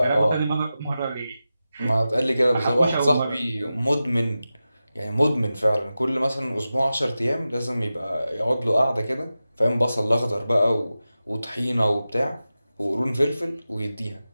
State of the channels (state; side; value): inverted; both; correlation -0.93